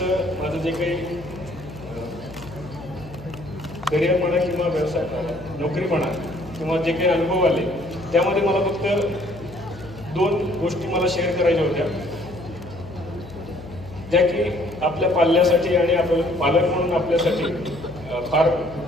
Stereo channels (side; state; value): left; noise; hum, 17 dB below the sound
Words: माझं जे काही करिअर म्हणा किंवा व्यवसाय नोकरी म्हणा किंवा जे काही अनुभव आले त्यामध्ये मला फक्त 2 गोष्टी मला शेअर करायच्या होत्या, ज्या की आपल्या पाल्यासाठी आणि आपण पालक म्हणून आपल्यासाठी फार